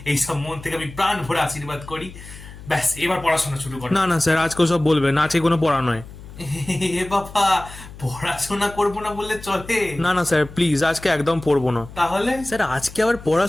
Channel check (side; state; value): left; noise; hum, 16 dB below the sound